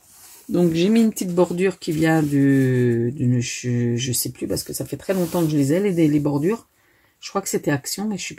Donc, j'ai mis une petite bordure qui vient je ne sais plus parce que ça fait très longtemps que je les ai, les bordures. Je crois que c'était Action, mais je suis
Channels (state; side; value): identical; both; correlation 1.00